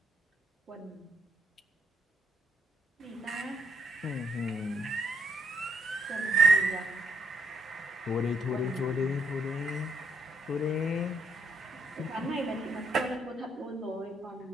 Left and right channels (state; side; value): normal; both; correlation 0.73